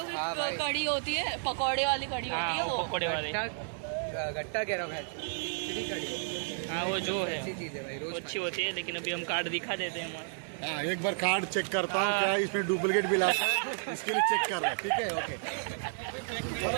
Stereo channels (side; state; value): left; silent; 57 dB below the other